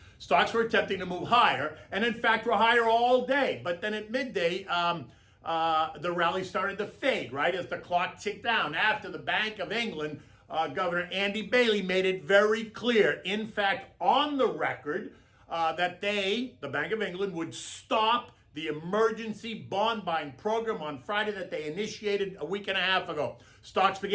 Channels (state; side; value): identical; both; correlation 1.00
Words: stocks were attempting to move higher, and in fact were higher all day. But then at midday, the rally started to fade, right, as the clock ticked down after the Bank of England, Governor Andy Bailey, made it very clear, in fact, on the record, that the Bank of England, would stop the emergency bond buying program on Friday that they initiated a week and a half ago. Stocks